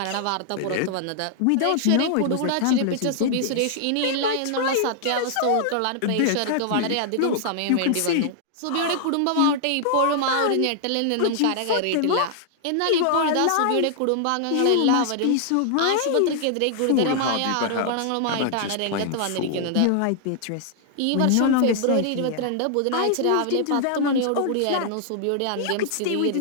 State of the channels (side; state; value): both; different; correlation -0.01